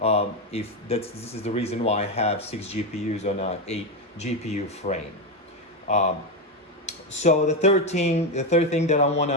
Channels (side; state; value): both; normal; correlation 0.10